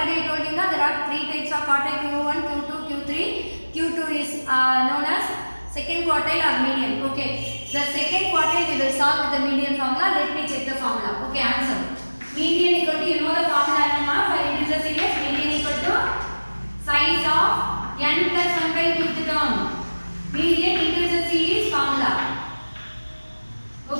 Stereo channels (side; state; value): both; inverted; correlation -1.00